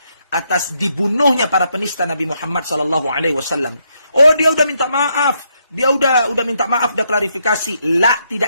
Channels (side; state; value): both; inverted; correlation -0.77